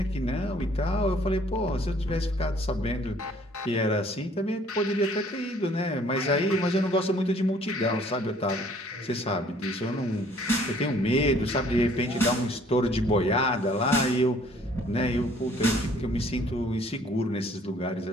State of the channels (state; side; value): normal; both; correlation 0.58